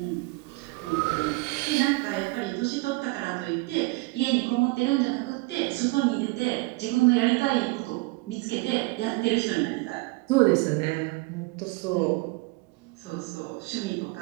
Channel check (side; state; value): left; quieter; 24.6 dB